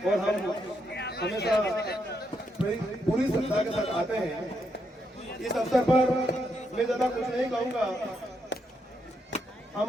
और हम हमेशा पूरी श्रद्धा के साथ आते हैं। इस अवसर पर मैं ज्यादा कुछ नहीं कहूँगा।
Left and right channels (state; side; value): normal; both; correlation 0.79